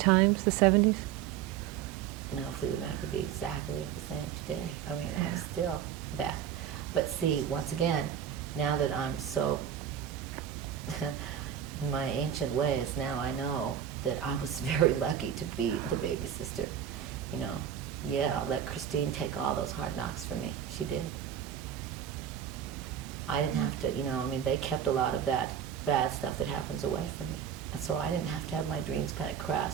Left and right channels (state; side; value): quieter; left; 9.3 dB